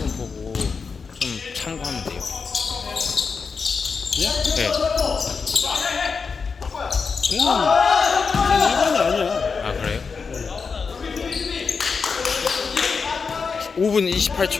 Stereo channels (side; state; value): right; quieter; 5.2 dB